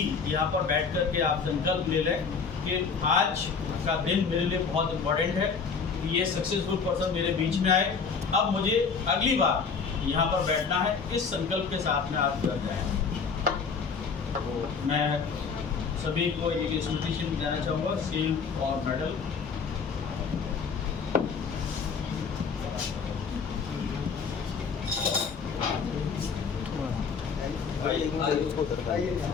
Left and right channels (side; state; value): right; quieter; 5.5 dB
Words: यहाँ पर बैठ कर के आप संकल्प ले लें कि आज का दिन मेरे लिए बहुत इम्पोर्टेंट है कि ये सक्सेसफुल पर्सन मेरे बीच में आए। अब मुझे अगली बार यहाँ पर बैठना है, इस संकल्प के साथ में आप जुड़ जाएं। तो मैं सभी को एक स्मृति चिन्ह देना चाहूँगा, सील और मेडल।